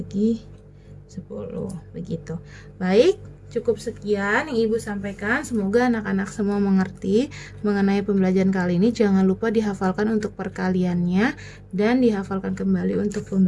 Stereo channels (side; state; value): both; identical; correlation 1.00